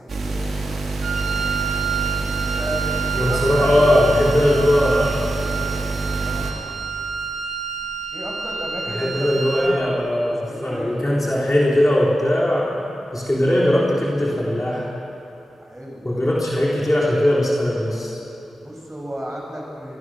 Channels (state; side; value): normal; both; correlation 0.90